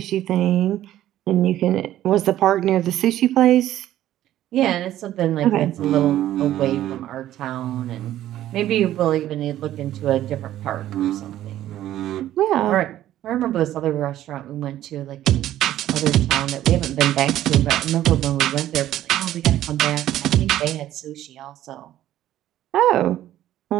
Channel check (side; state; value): left; quieter; 13.0 dB